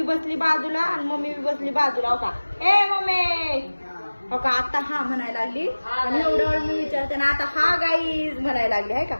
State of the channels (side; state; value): both; inverted; correlation -1.00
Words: बसली बाजूला आणि मम्मी बी बसली बाजूला. हो का, ए मम्मी हो का. आता हा म्हणायला लागली आणि एवढं वेळ मी विचारते ना आता हा गाईज म्हणायला लागली आहे का.